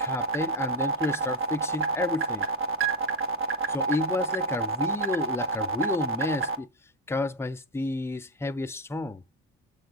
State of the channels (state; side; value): normal; both; correlation 0.06